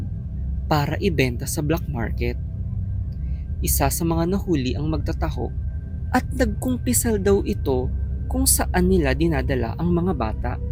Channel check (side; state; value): both; identical; correlation 1.00